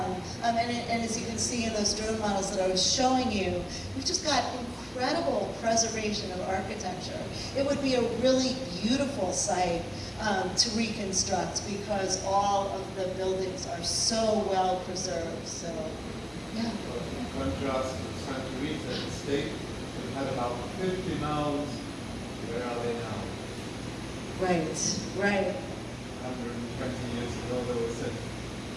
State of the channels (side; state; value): both; identical; correlation 1.00